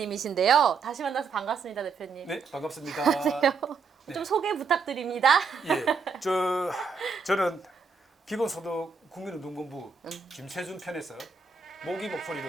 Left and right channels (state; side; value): quieter; left; 5.2 dB